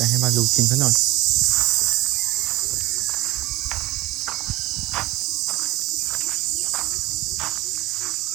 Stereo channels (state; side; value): quieter; left; 19.0 dB